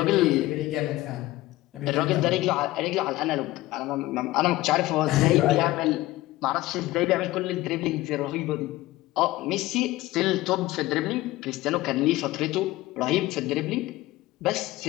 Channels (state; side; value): quieter; right; 17.6 dB